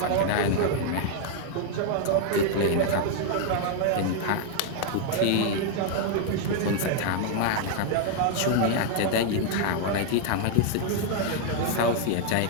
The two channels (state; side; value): different; both; correlation 0.00